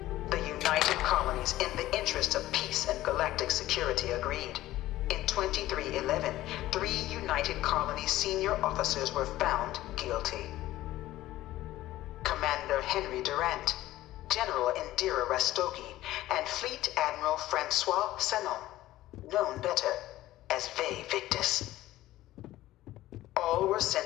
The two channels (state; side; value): quieter; right; 15.5 dB